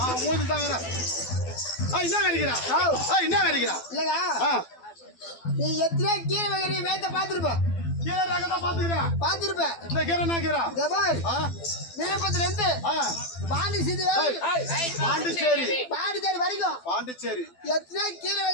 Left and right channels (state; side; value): late; right; 12 ms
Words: மூஞ்சி தான் வேற என்ன வெறிக்கிறா என்ன வெறிக்கிறா இல்லங்க நீ எத்தனை கீரை வகை வேத்த பாத்துருப்ப கீரை ரகம் தான் பாத்துருப்ப இந்த கீரை என்ன கீரை விழுப்புரத்துல இருந்து பாண்டிச்சேரி வரைக்கும் பாண்டிச்சேரி எத்தனை கீரை